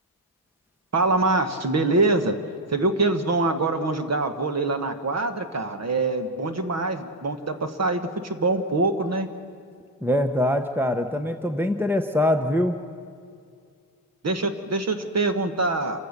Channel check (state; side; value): normal; both; correlation 0.09